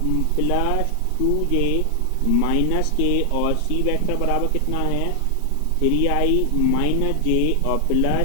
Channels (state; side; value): different; both; correlation 0.00